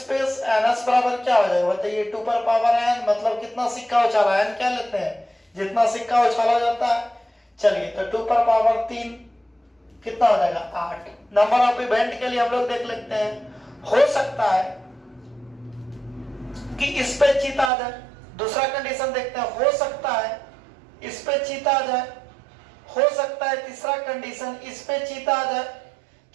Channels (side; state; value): left; drops out; at 17.7 s